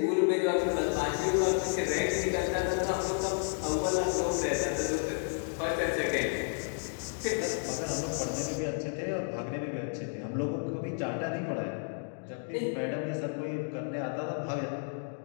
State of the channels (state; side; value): silent; right; 57 dB below the other